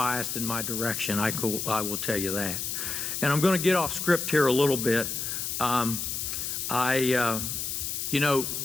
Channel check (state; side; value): noise; left; hiss, 3 dB below the sound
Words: in my direction. I will tell you that. And I'm going to get off script here a little bit. You know,